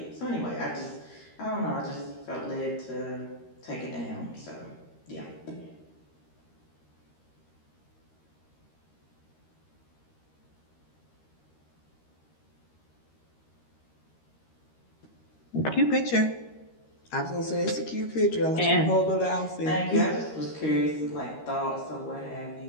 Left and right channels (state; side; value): late; right; 13 ms